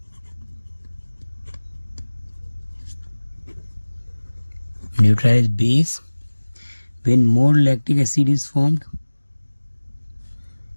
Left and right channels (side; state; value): both; inverted; correlation -1.00